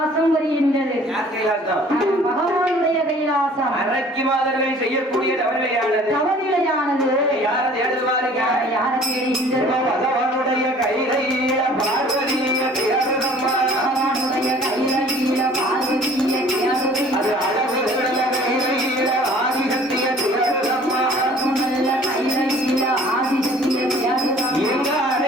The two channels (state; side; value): normal; both; correlation 0.51